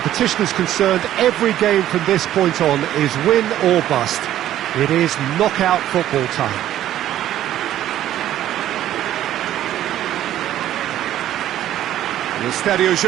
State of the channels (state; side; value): quieter; left; 12.5 dB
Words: is concerned, every game from this point on is win or bust. It is knockout football time. The Estadio